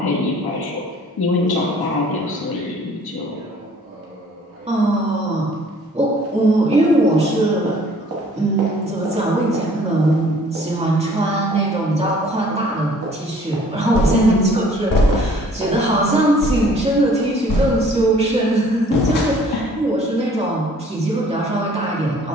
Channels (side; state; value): both; normal; correlation 0.55